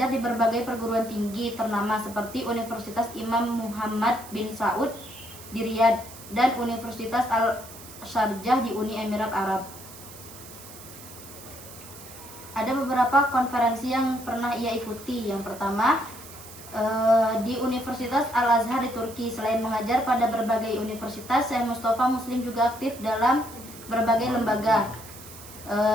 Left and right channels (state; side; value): noise; right; hiss, 16 dB below the sound